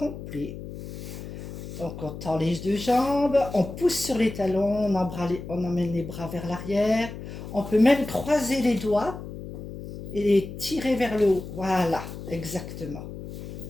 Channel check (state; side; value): noise; left; hum, 10 dB below the sound